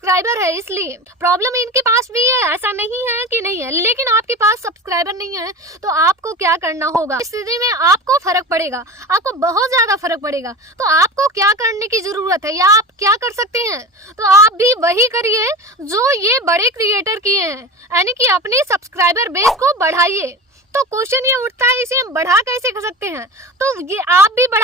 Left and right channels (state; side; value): normal; both; correlation 0.30